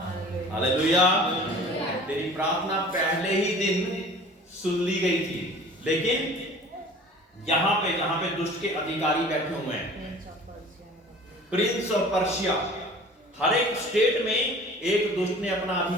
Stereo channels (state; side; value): normal; both; correlation 0.45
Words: हालेलुया। तेरी प्रार्थना पहले ही दिन सुन ली गई थी। लेकिन यहां पे जहां पे दुष्ट के अधिकारी बैठे हुए हैं, प्रिंस ऑफ पर्शिया, हर एक स्टेट में एक दुष्ट ने अपना